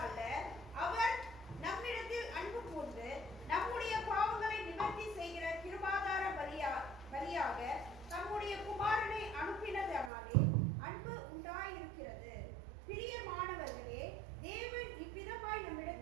அல்ல, அவர் நம்மிடத்தில் அன்பு கூர்ந்து நம்முடைய பாவங்களை நிவர்த்தி செய்கிற கிருபாதார பலியாக தம்முடைய குமாரனை அனுப்பினதனாலே அன்பு உண்டாயிருக்கிறது. பிரியமானவர்களே, தேவன் இவ்விதமாய்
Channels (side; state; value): left; drops out; at 10.1 s